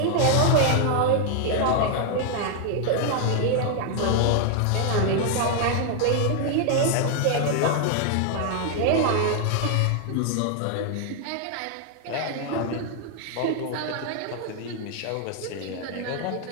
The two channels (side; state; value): both; different; correlation 0.00